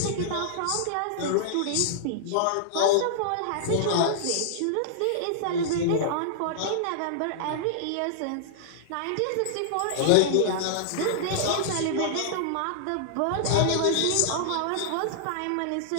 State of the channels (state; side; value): different; both; correlation -0.01